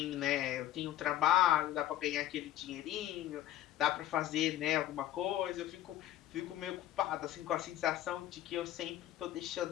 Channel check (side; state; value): right; quieter; 13.2 dB